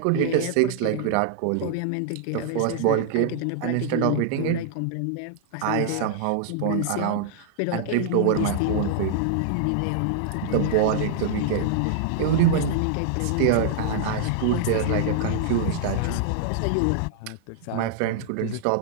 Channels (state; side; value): different; both; correlation -0.01